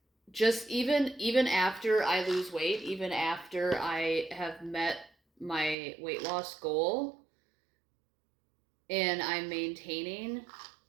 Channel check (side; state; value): left; drops out; at 5.8 s